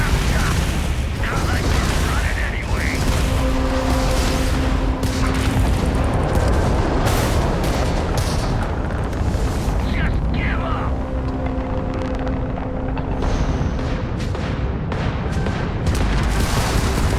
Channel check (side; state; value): both; identical; correlation 1.00